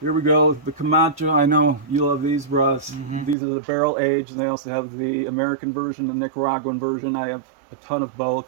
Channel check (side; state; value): left; drops out; at 3.4 s